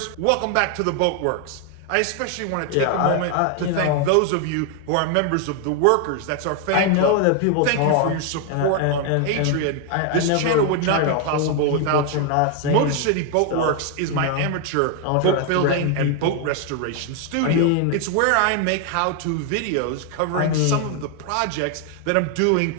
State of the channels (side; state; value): both; different; correlation 0.01